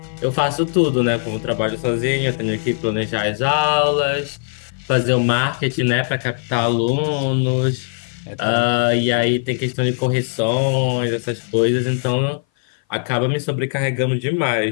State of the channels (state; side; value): silent; right; 58 dB below the other